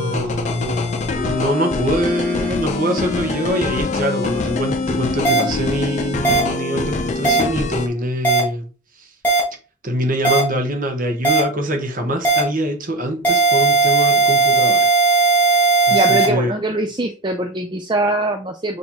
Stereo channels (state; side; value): normal; both; correlation 0.29